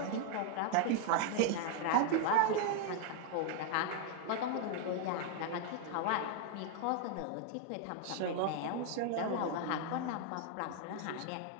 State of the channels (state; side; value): different; both; correlation 0.01